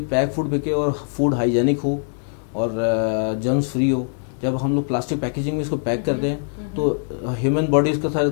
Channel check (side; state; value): right; silent; digital silence